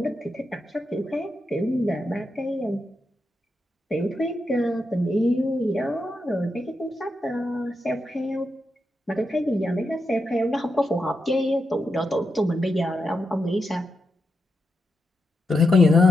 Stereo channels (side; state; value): both; normal; correlation 0.86